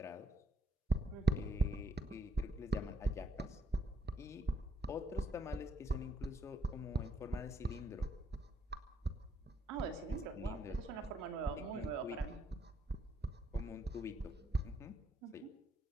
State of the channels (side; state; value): both; normal; correlation 0.74